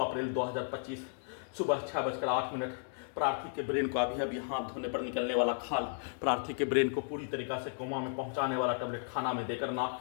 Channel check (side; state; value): right; silent; digital silence